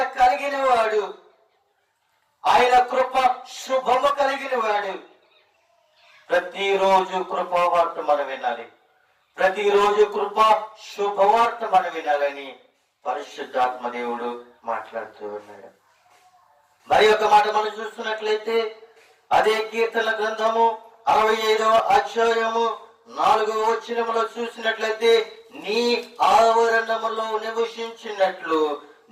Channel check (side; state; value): both; identical; correlation 1.00